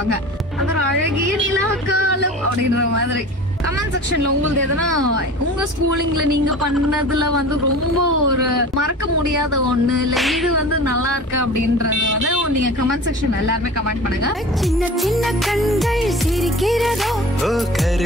அது அழகிய நிலாக்காலம் அப்படின்ற மாதிரி. கமெண்ட் செக்ஷன்ல உங்களுக்கு எதனா உங்க ஸ்கூலிங்ல நீங்க பண்ணதுல வந்து ரொம்ப ஒரு மறக்க முடியாத ஒண்ணு இல்ல இது வந்து நல்லா இருக்கு அப்படின்றது வந்து நீங்க கமெண்ட் செக்ஷன்ல எல்லாருமே கமெண்ட் பண்ணுங்க. சின்ன சின்ன கண்கள் சிரிக்கிறதோ,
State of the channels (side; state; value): both; normal; correlation 0.37